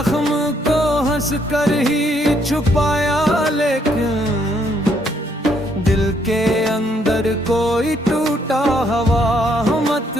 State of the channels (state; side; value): normal; both; correlation 0.70